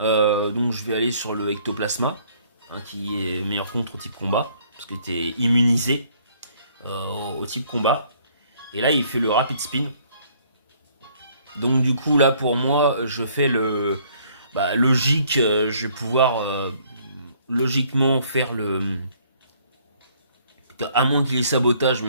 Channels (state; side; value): inverted; both; correlation -0.62